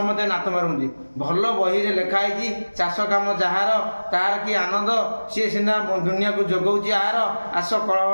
नात मारुंदी। भल बही रे लिखाई चाष काम जार तार कि आनंद सी सीना दुनिया को जोगाऊँ आर आस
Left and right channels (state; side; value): inverted; both; correlation -1.00